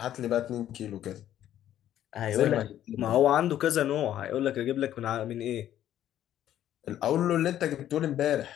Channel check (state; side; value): quieter; right; 11.7 dB